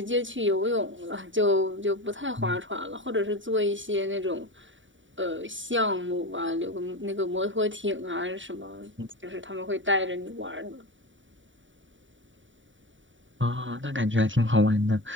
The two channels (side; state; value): left; late; 0.56 ms